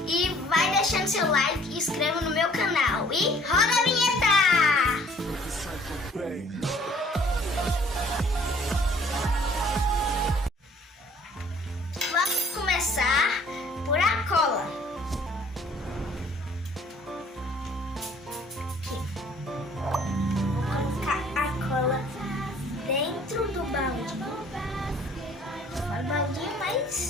E vai deixando seu like e inscreva no meu canal. E roda a vinheta! Vamos começar por a cola. Aqui. Vou colocar a cola dentro do balde. Fala baldinho,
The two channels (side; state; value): both; normal; correlation 0.56